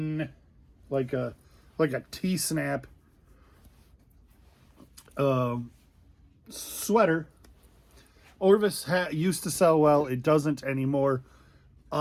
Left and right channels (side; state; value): both; identical; correlation 1.00